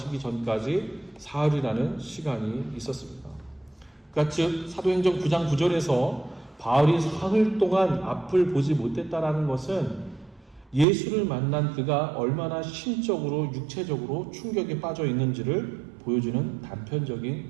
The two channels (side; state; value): left; drops out; at 10.9 s